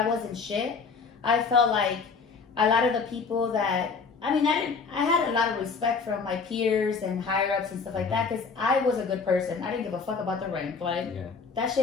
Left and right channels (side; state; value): right; quieter; 5.1 dB